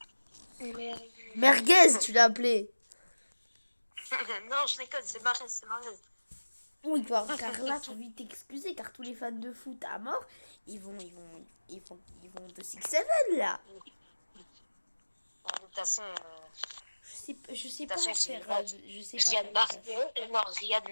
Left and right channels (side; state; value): both; inverted; correlation -1.00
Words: Merguez, tu l'as appelé. Non, je déconne, c'est Marez, c'est Marez. Oui, car là, j'ai envie de t'excuser, car tous les fans de foot à mort, ils vont de 6-7 là. De toute façon, Je sais pas façon, faire. c'est Je sais pas. Riyad Marguez, non, Riyad